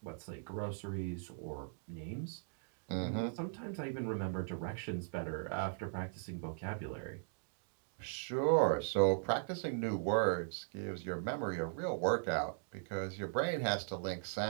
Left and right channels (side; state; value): left; silent; digital silence